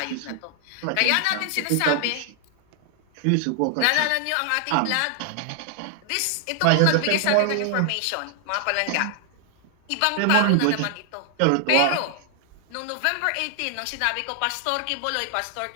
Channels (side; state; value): both; different; correlation 0.00